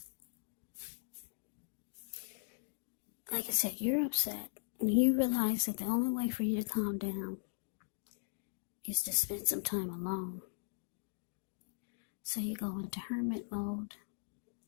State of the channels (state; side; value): silent; right; digital silence